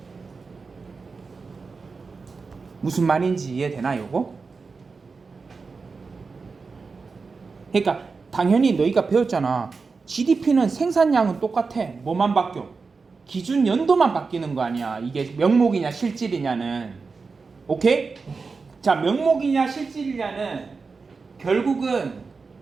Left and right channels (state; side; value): quieter; left; 4.6 dB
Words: 무슨 말인지 이해되나 요거? 그러니까 당연히 너희가 배웠잖아. GDP는 생산량은 똑같아. 뭐만 바뀌어? 기준 연도만 바뀌는 거 아니야. 이게 명목이냐 실질이냐는. 오케이? 자, 명목이냐 실질이냐는 결국은